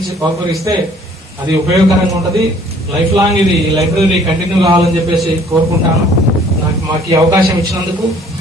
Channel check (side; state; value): both; normal; correlation 0.57